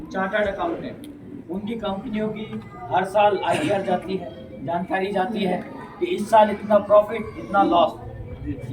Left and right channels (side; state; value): both; identical; correlation 1.00